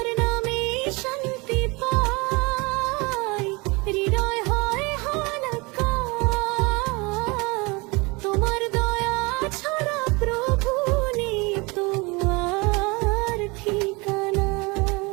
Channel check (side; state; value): left; quieter; 26.6 dB